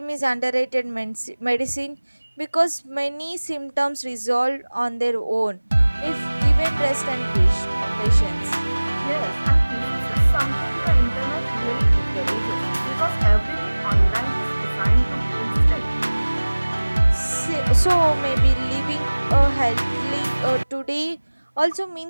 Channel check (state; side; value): inverted; both; correlation -1.00